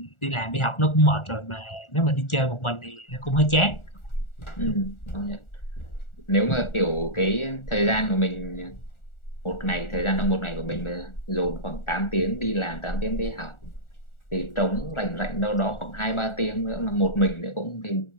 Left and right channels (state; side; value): late; right; 1.4 ms